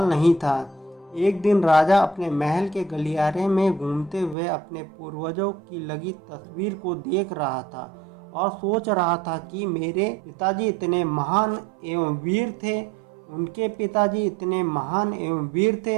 नहीं था। एक दिन राजा अपने महल के गलियारे में घूमते हुए अपने पूर्वजों की लगी तस्वीर को देख रहा था और सोच रहा था कि मेरे पिताजी इतने महान एवं वीर थे, उनके पिताजी इतने महान एवं वीर थे,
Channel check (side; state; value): left; drops out; at 4.4 s